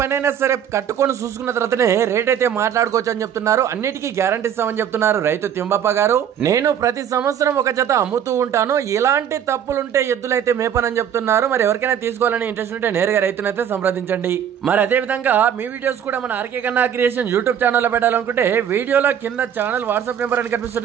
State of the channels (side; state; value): left; quieter; 9.0 dB